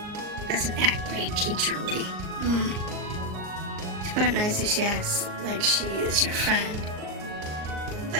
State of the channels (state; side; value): late; left; 38 ms